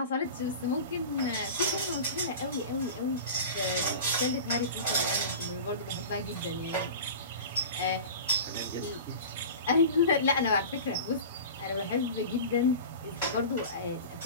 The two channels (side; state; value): both; inverted; correlation -0.34